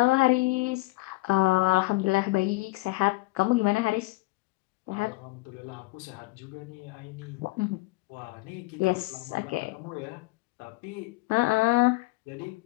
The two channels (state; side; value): quieter; right; 22.2 dB